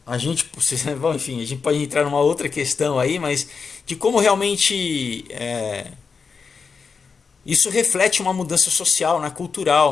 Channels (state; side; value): quieter; right; 5.3 dB